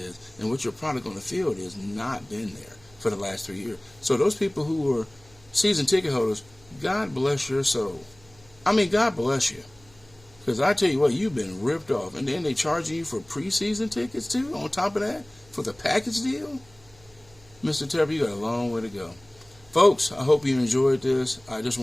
and what your product on the field is. Not been there for the last 3 years. So those people who are season ticket holders, God bless your soul. I mean, God bless you. Because I tell you what, you've been ripped off. And then they charging you for preseason tickets too, on top of that, for the package deal? Mr. Tepper, you got a long way to go. Folks, I hope you enjoyed this. I just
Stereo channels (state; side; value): noise; right; hum, 27 dB below the sound